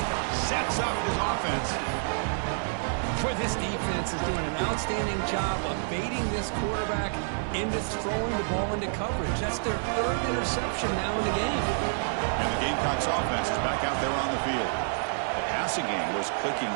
sets up his offense. Boy, this defense is doing an outstanding job of baiting this quarterback into throwing the ball into coverage. That's their third interception now in the game. And the Gamecocks offense is back out there on the field. The passing game was clicking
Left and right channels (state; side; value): silent; left; digital silence